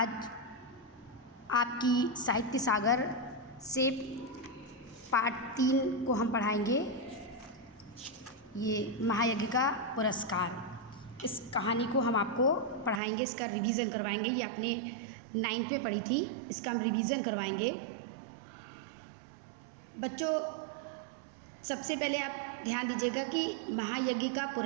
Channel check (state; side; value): drops out; left; at 13.0 s